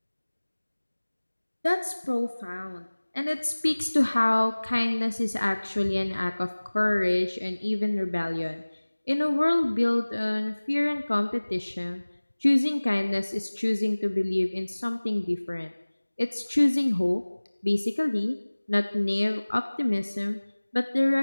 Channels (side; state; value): both; inverted; correlation -1.00